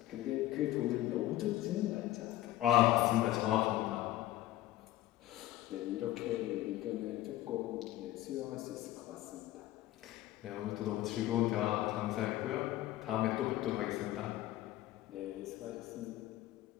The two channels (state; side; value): quieter; right; 15.2 dB